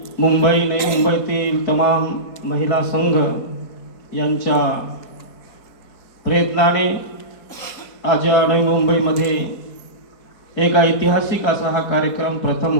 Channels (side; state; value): right; late; 4.7 ms